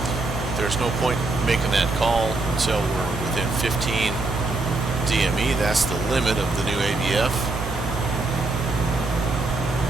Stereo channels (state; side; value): quieter; left; 3.2 dB